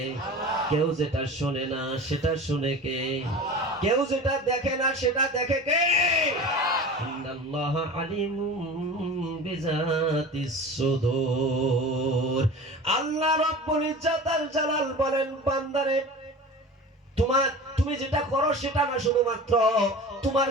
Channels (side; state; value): both; normal; correlation 0.35